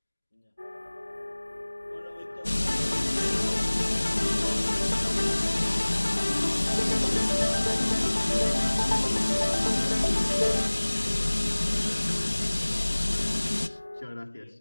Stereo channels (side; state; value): both; inverted; correlation -1.00